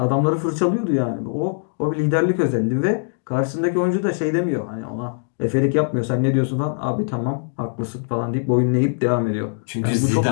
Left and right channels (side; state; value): right; silent; digital silence